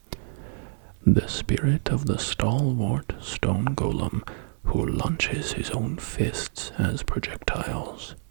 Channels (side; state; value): left; silent; 60 dB below the other